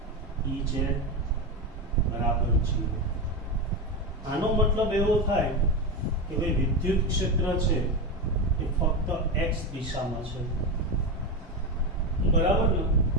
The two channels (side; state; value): both; normal; correlation 0.16